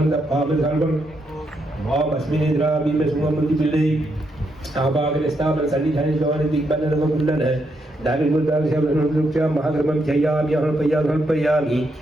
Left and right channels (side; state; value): both; normal; correlation 0.79